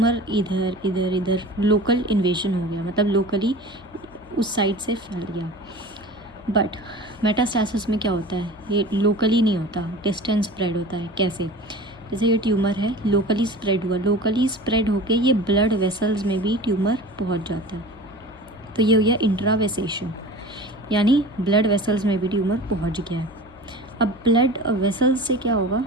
इधर इधर इधर लोकल इन्वेजन हो गया, मतलब लोकली उस साइड से फैल गया। बट मेटास्टैसिस में क्या होता है, ये लोकली नहीं होता, डिस्टेंस स्प्रेड होता है। कैसे? जैसे ये ट्यूमर है, लोकली स्प्रेड हुआ, लोकली स्प्रेड होके ये ब्लड वेसल्स में भी ट्यूमर पहुंच जाता है। तो ये हो गया इंट्रावेसेशन, यानी ब्लड वेसल्स में भी ट्यूमर पहुंच गया है। अब ब्लड वेसल्स से क्या होगा,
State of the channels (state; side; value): noise; left; hum, 24 dB below the sound